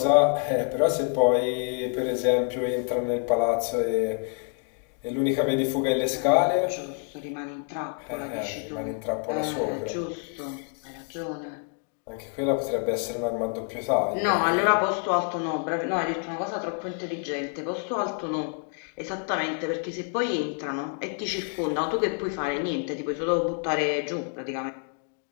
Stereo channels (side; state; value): right; quieter; 39.6 dB